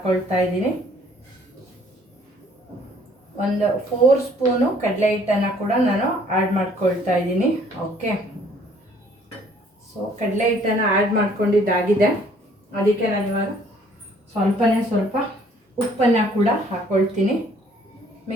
ಇದ್ದೀನಿ. ಒಂದು 4 ಸ್ಪೂನು ಕಡಲೆ ಹಿಟ್ಟನ್ನು ಕೂಡ ನಾನು ಆ್ಯಡ್ ಮಾಡ್ಕೊಳ್ತಾ ಇದ್ದೀನಿ. ಓಕೆ, ಸೊ ಕಡಲೆ ಹಿಟ್ಟನ್ನು ಆ್ಯಡ್ ಮಾಡ್ಕೊಂಡಿದ್ದಾಗಿದೆ. ಅದಕ್ಕೆ ನಾನು ಇವಾಗ ಸ್ವಲ್ಪ ಉಪ್ಪನ್ನು ಕೂಡ ಹಾಕ್ಕೊಳ್ತೀನಿ.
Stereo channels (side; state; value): both; normal; correlation 0.60